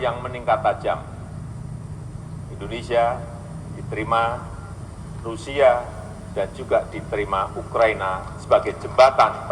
meningkat tajam. Indonesia diterima Rusia dan juga diterima Ukraina sebagai jembatan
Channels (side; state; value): both; identical; correlation 1.00